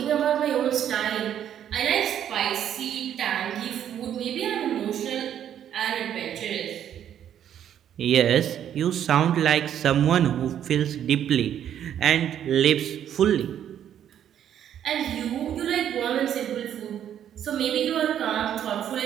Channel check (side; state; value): left; quieter; 10.0 dB